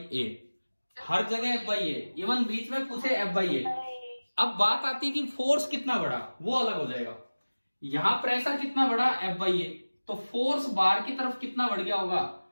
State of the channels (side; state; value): both; inverted; correlation -1.00